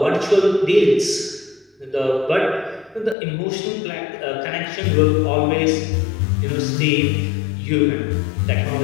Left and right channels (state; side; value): drops out; right; at 3.2 s